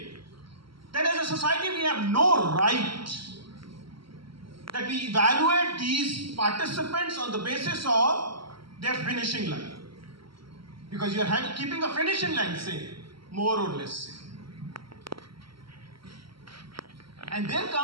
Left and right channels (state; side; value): late; left; 0.74 ms